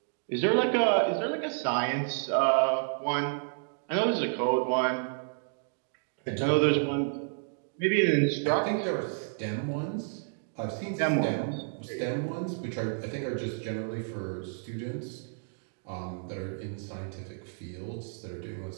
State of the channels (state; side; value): silent; left; digital silence